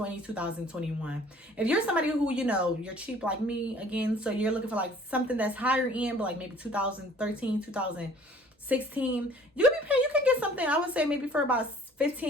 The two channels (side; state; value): both; normal; correlation 0.52